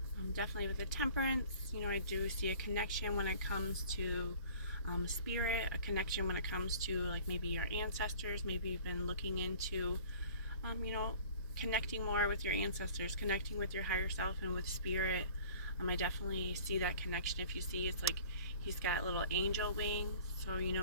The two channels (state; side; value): inverted; both; correlation -0.47